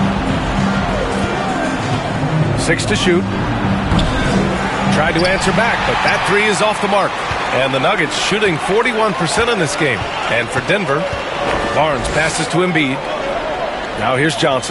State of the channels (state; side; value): identical; both; correlation 1.00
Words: 6 to shoot. Tried to answer back, but that three is off the mark. And the Nuggets shooting 41% in this game. And for Denver, Barnes passes to Embiid. Now here's